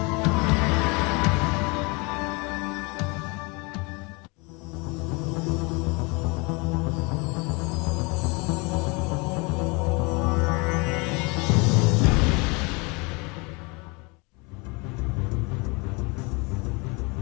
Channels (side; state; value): right; quieter; 28.6 dB